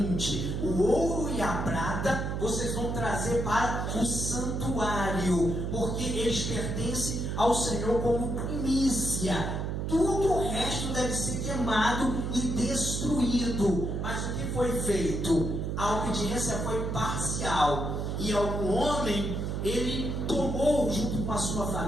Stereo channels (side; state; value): right; noise; hum, 2 dB below the sound